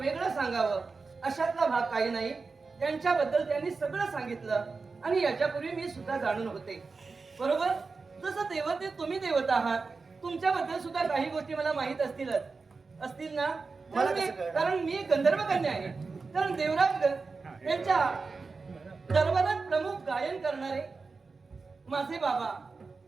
सांगावं अशातला भाग काही नाही. त्यांच्याबद्दल त्यांनी सगळं सांगितलं आणि याच्यापूर्वी मी सुद्धा जाणून होते. बरोबर, जसं देवते तुम्ही देवता आहात, तुमच्याबद्दल सुद्धा काही गोष्टी मला माहित असतील ना? कारण मी गंधर्व कन्या आहे. कारण देवराज यांच्या दरबारात प्रमुख गायन करणारे माझे बाबा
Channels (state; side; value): quieter; left; 4.3 dB